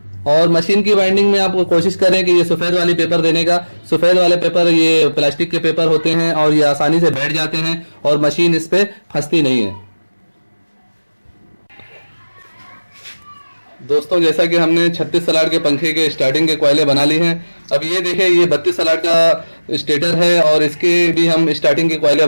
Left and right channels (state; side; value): inverted; both; correlation -1.00